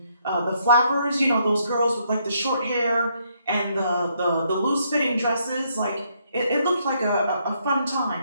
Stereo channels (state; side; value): inverted; both; correlation -0.72